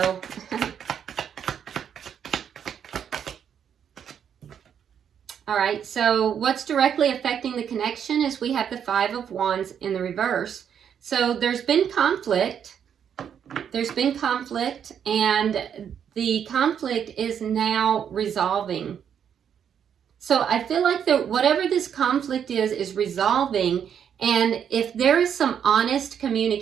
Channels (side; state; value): left; quieter; 8.3 dB